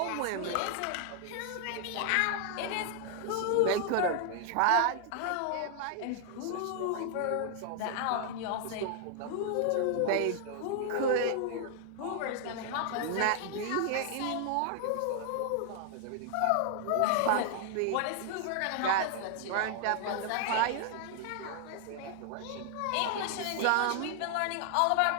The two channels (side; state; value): both; different; correlation 0.00